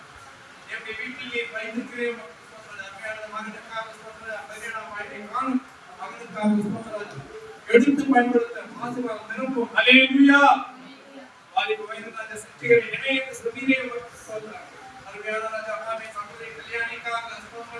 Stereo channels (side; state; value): both; identical; correlation 1.00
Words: எம்முடைய வீட்டிலே வைத்திருக்கிறேன் அருமையான மகனுக்காக ஸ்தோத்திரம். அருமையான வாழ்க்கை காணும் மகனுக்காக ஸ்தோத்திரம். எடுத்து பயன்படுத்த ஆசீர்வாதம் நிரப்பும். அல்லேலூயா. வாலிப வயதில் அந்த சக்திகளை இணையத்து சுமீரே ஸ்தோத்திரம். அருமையான ராஜா ஆமே சகோதரி கல்யாணிக்காக